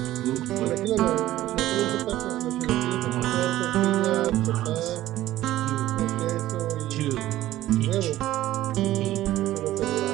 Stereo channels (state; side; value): quieter; left; 14.7 dB